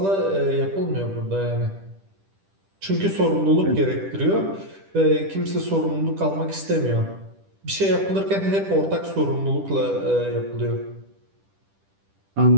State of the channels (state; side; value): late; left; 10 ms